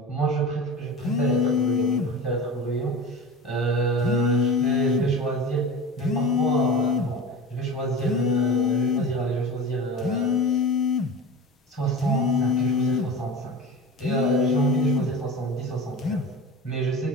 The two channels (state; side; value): normal; both; correlation 0.31